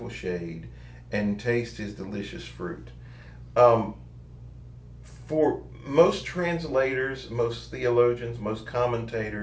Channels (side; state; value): both; identical; correlation 1.00